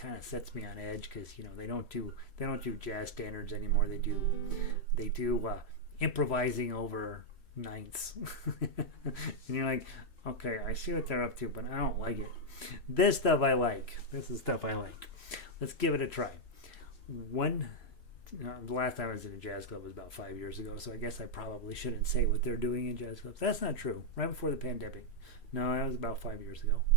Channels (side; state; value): right; late; 3.1 ms